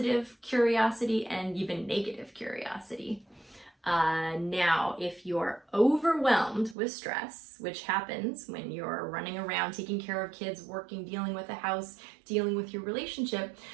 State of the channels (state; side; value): drops out; left; at 6.8 s